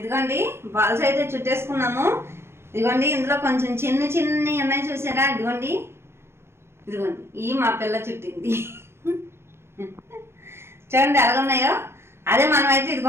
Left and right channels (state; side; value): late; left; 0.12 ms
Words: బాల్స్ అయితే చుట్టేసుకున్నాము. ఇదిగోండి ఇందులో కొంచెం చిన్ని ఉన్నాయి చూసారా, ఇదిగోండి ఈ మా పిల్ల చుట్టింది. చూడండి ఎలా ఉన్నాయో. అదే మనమైతే